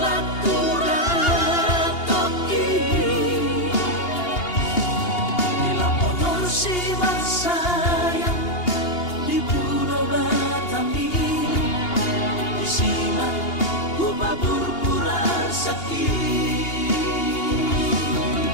turat toki, bila motor si sayang di Pulau Batam ini disimak upah pura sakit,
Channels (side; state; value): right; late; 2.8 ms